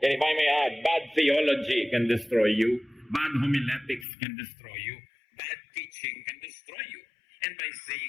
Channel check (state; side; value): drops out; right; at 4.0 s